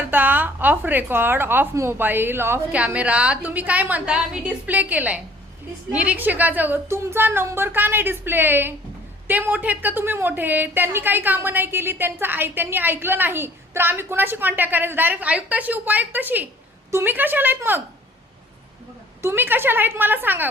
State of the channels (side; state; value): both; normal; correlation 0.55